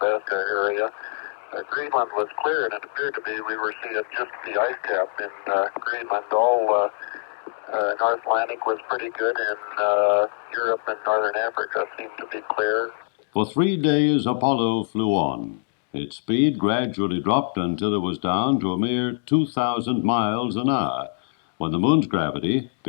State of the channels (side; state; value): right; silent; digital silence